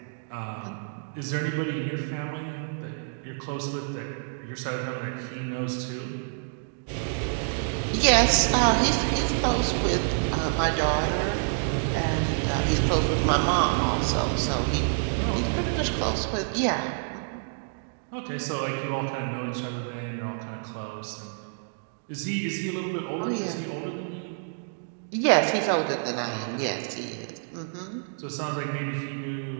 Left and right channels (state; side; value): silent; left; digital silence